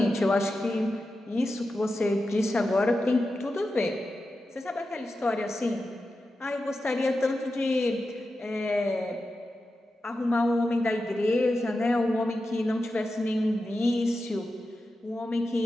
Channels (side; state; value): both; normal; correlation 0.91